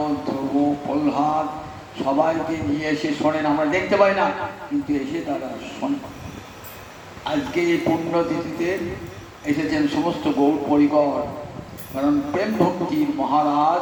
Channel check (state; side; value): identical; both; correlation 1.00